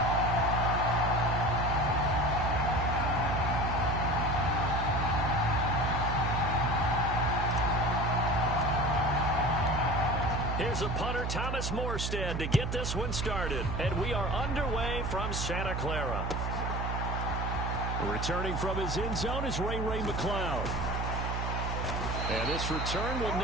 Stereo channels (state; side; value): noise; right; hum, 2 dB below the sound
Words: Here's a punter, Thomas Morstead, to get this one started. And we are underway from Santa Clara. Returning from his end zone is Ray McCloud. And this return will